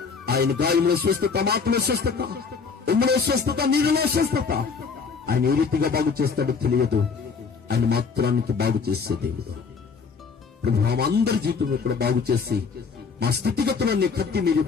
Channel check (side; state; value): right; quieter; 5.3 dB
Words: ఆయన గాయంలో స్వస్థత, మాటలో స్వస్థత, ఉమ్మలో స్వస్థత, నీళ్ళలో స్వస్థత. ఆయన ఏ రీతిగా బాగు చేస్తాడో తెలియదు. ఆయన మాత్రానికి బాగు చేసే దేవుడు. ప్రభు అందరి జీవితంలో కూడా బాగు చేసి, మా స్థితిగతులన్నీ కత్తి మీరు